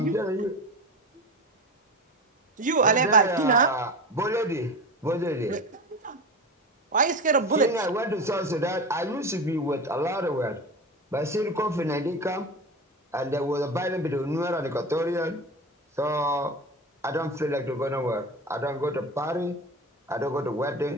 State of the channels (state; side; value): normal; both; correlation 0.27